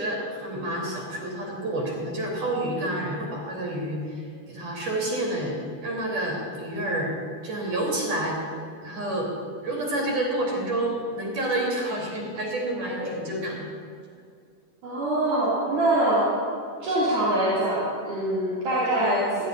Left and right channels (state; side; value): late; left; 10 ms